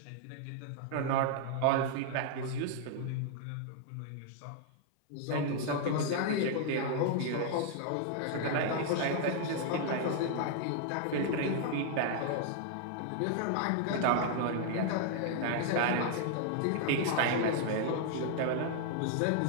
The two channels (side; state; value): both; different; correlation 0.00